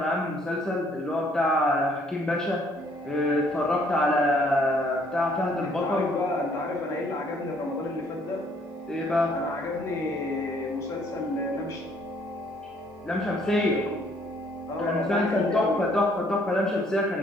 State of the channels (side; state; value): both; normal; correlation 0.64